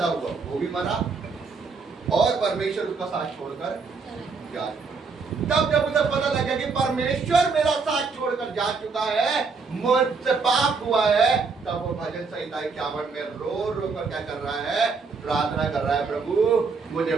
हुआ वो भी मरा और परमेश्वर उसका साथ छोड़कर जा। तब जब उसे पता लगा कि परमेश्वर मेरा साथ छोड़कर जा चुका है, मुझसे पाप हुआ है, तब वो भजन संहिता 51 में रो रो कर क्या कर रहा है, प्रार्थना कर रहा है, प्रभु मुझे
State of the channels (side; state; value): left; quieter; 4.7 dB